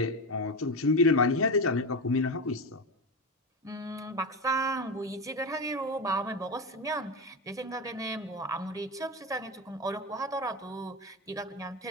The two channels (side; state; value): both; normal; correlation 0.18